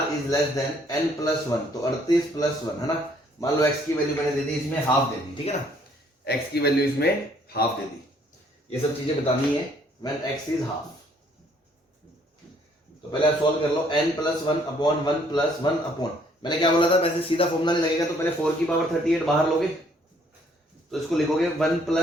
is less than n plus 1, तो 38 प्लस 1 है ना। मान लो x की वैल्यू मैंने दे दी, इसमें हाफ दे दी, ठीक है ना, x की वैल्यू इसमें हाफ दे दी। ये सब चीजें बतानी है व्हेन x इज हाफ। तो पहले आप सॉल्व कर लो, n plus 1 upon 1 plus 1 upon, मैंने क्या बोला था, वैसे सीधा फॉर्मूला नहीं लगेगा, तो पहले 4 की पावर 38 बाहर लोगे तो इसको लिखोगे 1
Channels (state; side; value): normal; both; correlation 0.64